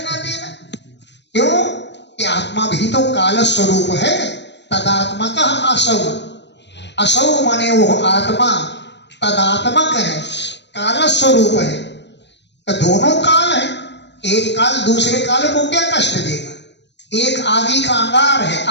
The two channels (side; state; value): right; late; 0.51 ms